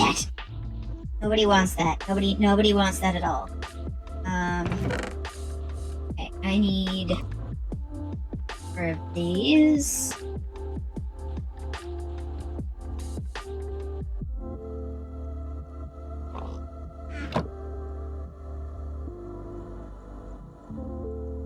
Nobody wants that. Nobody wants that at all. Okay, I need 4 of these.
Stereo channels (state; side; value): identical; both; correlation 1.00